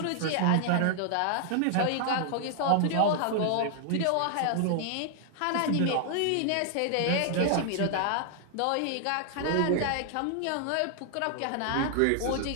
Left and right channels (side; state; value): both; different; correlation 0.00